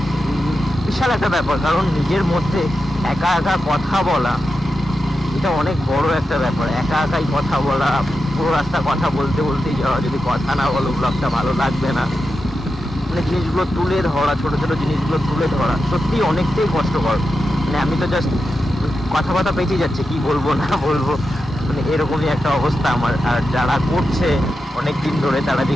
বিশাল একটা ব্যাপার। কারণ নিজের মধ্যে একা একা কথা বলা, এটা অনেক বড় একটা ব্যাপার। একাই কথা বলা, পুরো রাস্তা কথা বলতেই যাওয়া, যদি কথা না বলো ব্লগটা ভালো লাগবে না। মানে জিনিসগুলো তুলে ধরা, ছোট ছোট জিনিসগুলো তুলে ধরা সত্যি অনেকটাই কষ্টকর। মানে আমি তো জাস্ট কথা পেঁচিয়ে যাচ্ছে, কি বলবো না বলবো, মানে এরকমই একটা অবস্থা আমার। আর যারা করছে অনেক দিন ধরে তারা যে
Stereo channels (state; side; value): normal; both; correlation 0.89